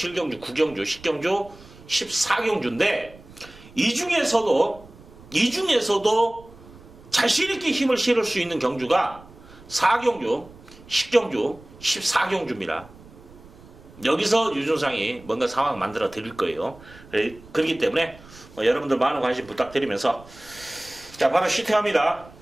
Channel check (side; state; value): right; noise; rumble, 22 dB below the sound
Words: 9경주, 10경주, 14경주인데, 이 중에서도 자신있게 힘을 실을 수 있는 경주가 4경주, 10경주, 14경주입니다. 여기서 유준상이 뭔가 상황을 만들어 드릴 거예요. 그렇기 때문에 여러분들 많은 관심 부탁드리면서 자, 바로 시팅합니다.